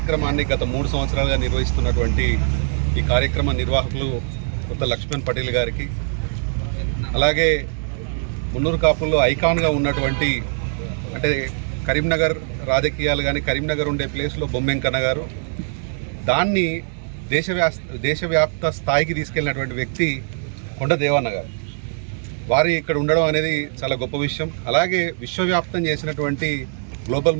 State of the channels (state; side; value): silent; left; 61 dB below the other